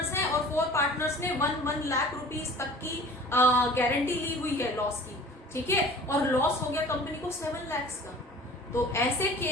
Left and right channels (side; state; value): both; normal; correlation 0.45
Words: हैं और 4 पार्टनर्स ने 1 लाख रुपीस तक की गारंटी ली हुई है लॉस की, ठीक है, और लॉस हो गया कंपनी को 7 लाख का, तो ऐसे